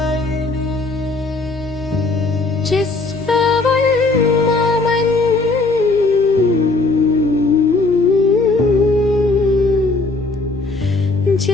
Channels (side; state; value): right; quieter; 3.4 dB